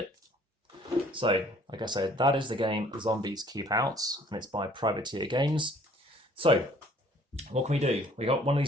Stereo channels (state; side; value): normal; both; correlation 0.57